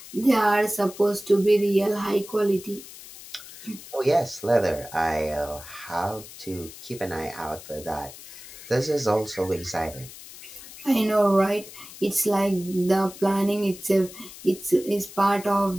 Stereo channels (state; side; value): noise; left; hiss, 16 dB below the sound